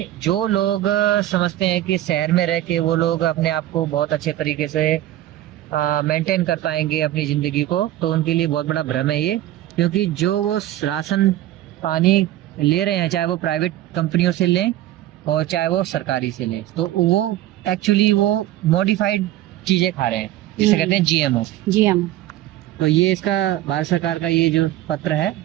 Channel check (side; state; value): left; quieter; 13.9 dB